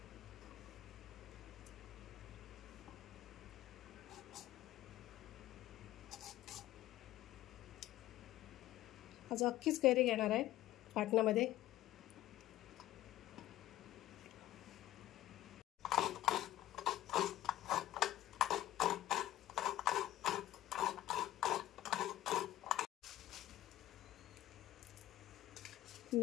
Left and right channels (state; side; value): quieter; right; 14.5 dB